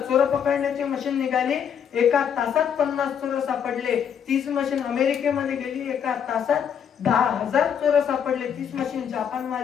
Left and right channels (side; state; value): right; quieter; 8.1 dB